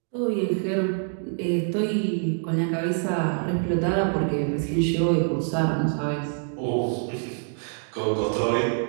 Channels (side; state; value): left; silent; digital silence